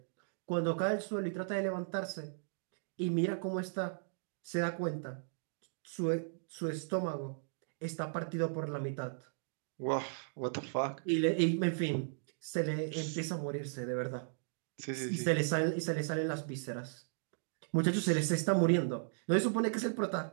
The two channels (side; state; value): left; silent; digital silence